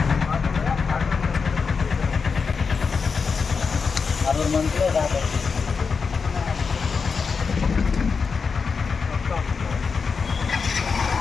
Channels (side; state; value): right; quieter; 5.3 dB